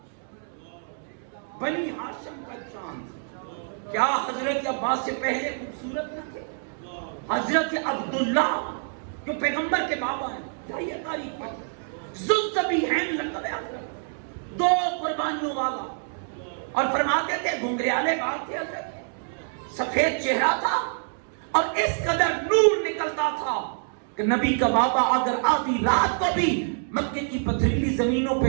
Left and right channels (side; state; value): left; silent; digital silence